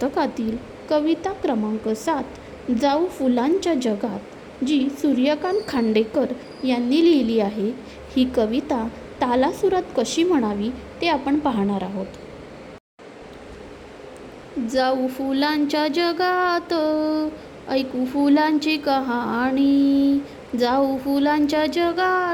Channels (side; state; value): both; identical; correlation 1.00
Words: कविता क्रमांक 7 जाऊ फुलांच्या जगात, जी सूर्यकांत खांडेकर यांनी लिहिली आहे. ही कविता तालासुरात कशी म्हणावी ते आपण पाहणार आहोत. जाऊ फुलांच्या जगात, ऐकू फुलांची कहाणी. जाऊ फुलांच्या